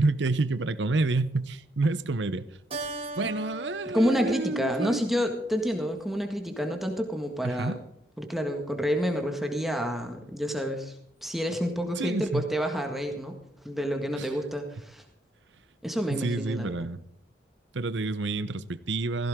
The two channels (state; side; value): normal; both; correlation 0.75